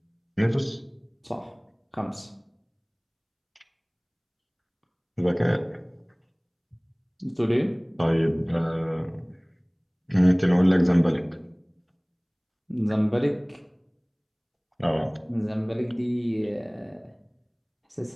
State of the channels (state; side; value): identical; both; correlation 1.00